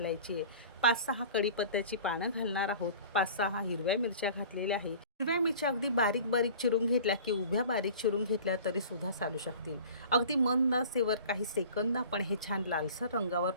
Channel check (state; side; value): inverted; both; correlation -0.43